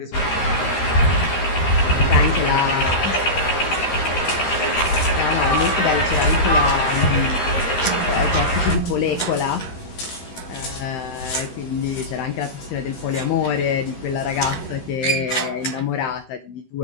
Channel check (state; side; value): late; right; 13 ms